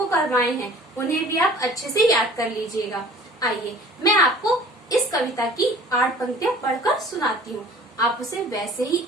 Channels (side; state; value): both; normal; correlation 0.48